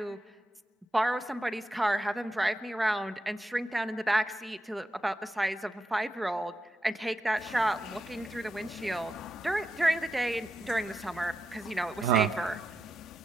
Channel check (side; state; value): both; normal; correlation 0.86